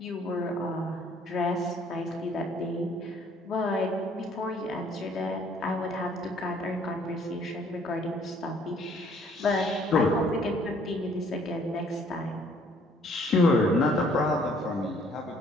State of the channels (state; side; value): normal; both; correlation 0.61